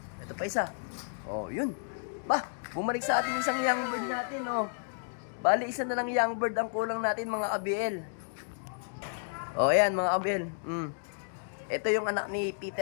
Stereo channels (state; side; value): silent; right; digital silence